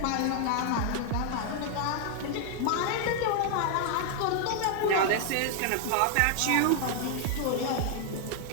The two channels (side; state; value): both; different; correlation 0.00